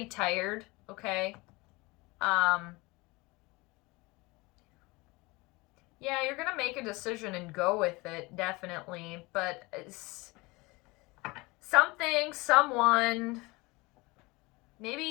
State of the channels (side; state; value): right; quieter; 23.9 dB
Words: tired, okay, yeah, you're gonna make a decision and go with it, definitely, but someone,